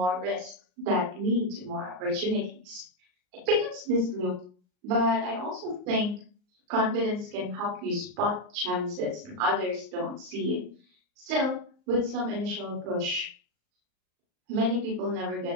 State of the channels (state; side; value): late; left; 38 ms